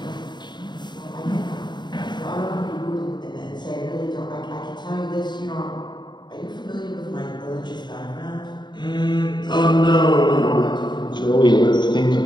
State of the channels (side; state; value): right; late; 0.21 ms